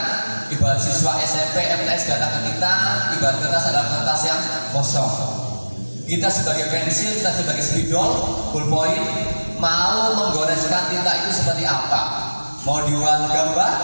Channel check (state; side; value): inverted; both; correlation -1.00